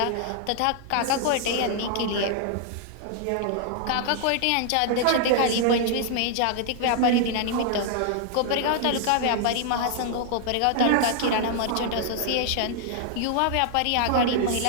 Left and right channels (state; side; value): different; both; correlation 0.00